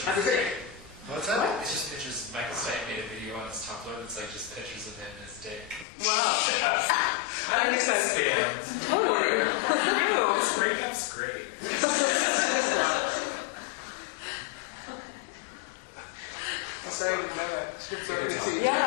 That's great. What's that? It's just pictures. Michael Stipe made a video on his Tumblr that's like just pictures of him and his dick. Wow. I think that's fans. This breakup's great. Sorry, I didn't know that. Sorry.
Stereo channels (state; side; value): drops out; right; at 5.9 s